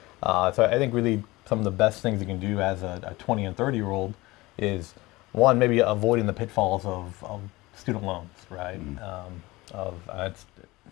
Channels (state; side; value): quieter; right; 20.7 dB